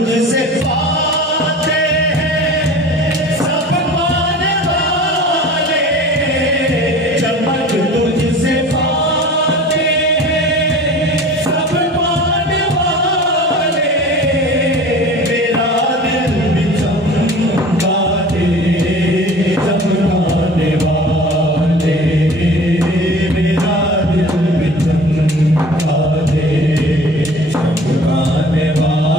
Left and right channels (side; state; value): both; normal; correlation 0.42